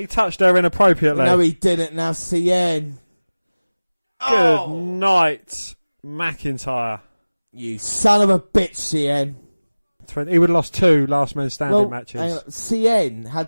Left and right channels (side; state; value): both; inverted; correlation -1.00